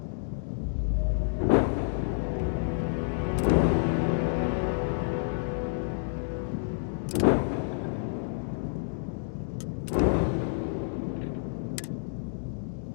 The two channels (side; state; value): right; silent; digital silence